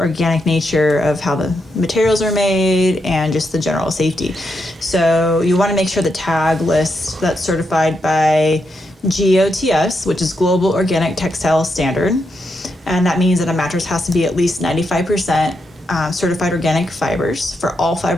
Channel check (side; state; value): both; normal; correlation 0.82